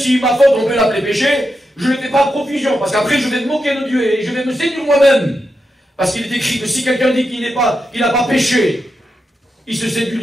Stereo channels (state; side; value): normal; both; correlation 0.87